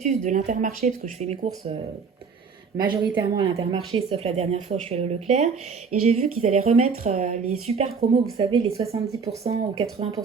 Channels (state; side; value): quieter; left; 5.5 dB